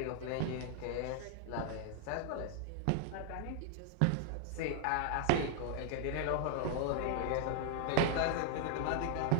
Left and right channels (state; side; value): different; both; correlation 0.00